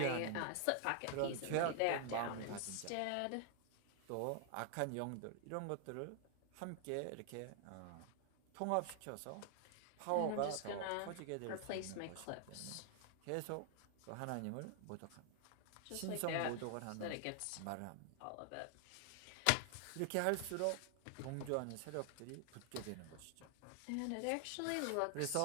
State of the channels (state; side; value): different; both; correlation 0.00